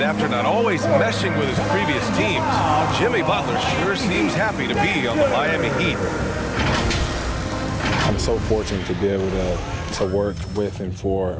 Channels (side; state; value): both; identical; correlation 1.00